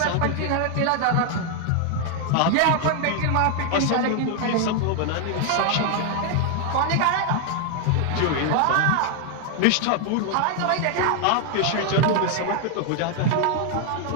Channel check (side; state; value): both; different; correlation 0.01